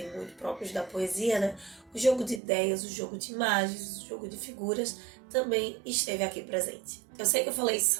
muito próprios da poesia, né? O jogo de ideias, o jogo de imagens, o jogo de figuras também esteve aqui presente. Eu sei que eu falei isso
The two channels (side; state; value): left; drops out; at 2.4 s